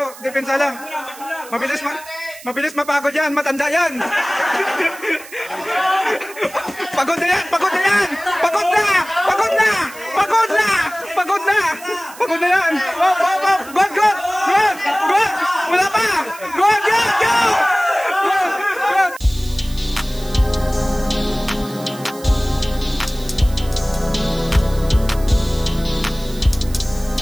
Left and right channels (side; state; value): right; noise; hiss, 18 dB below the sound